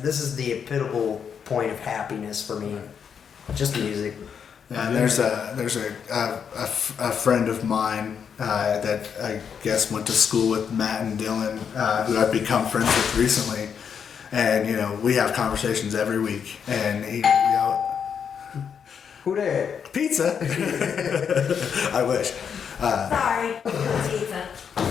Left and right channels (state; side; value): quieter; right; 7.2 dB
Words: is the epitome point of happiness for me. Just music. Yeah, and there's a friend of mine that I guess went to school with Matt and Dylan, who I've become friends with recently, and you know we have conversations every week, and he, you know, Who there? pizza. I wish. Sorry, pizza.